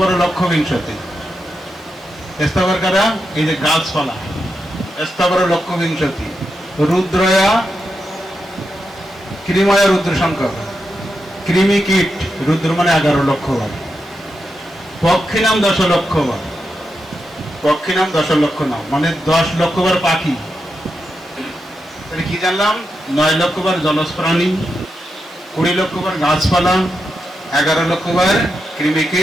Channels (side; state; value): both; normal; correlation 0.86